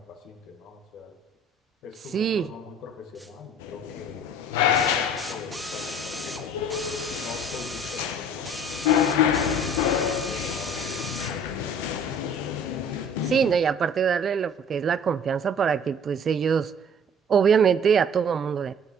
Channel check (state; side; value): normal; both; correlation 0.50